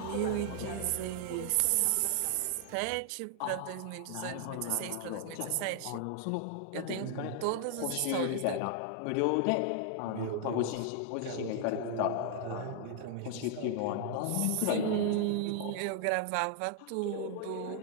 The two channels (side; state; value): both; different; correlation 0.00